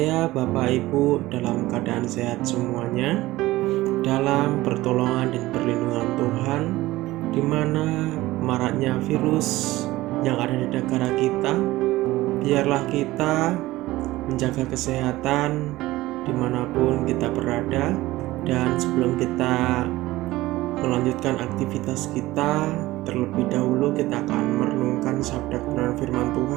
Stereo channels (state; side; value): quieter; left; 17.8 dB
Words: Bapak Ibu dalam keadaan sehat semuanya, dalam pertolongan dan perlindungan Tuhan, di mana maraknya virus yang ada di negara kita. Biarlah kita menjaga kesehatan dimanapun kita berada. Dan sebelum kita melanjutkan aktivitas kita, terlebih dahulu kita akan merenungkan sabda kebenaran firman